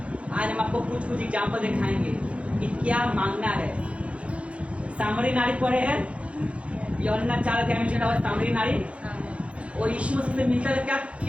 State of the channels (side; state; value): left; late; 0.062 ms